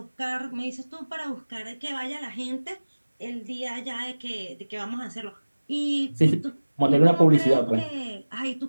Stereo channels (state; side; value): inverted; both; correlation -1.00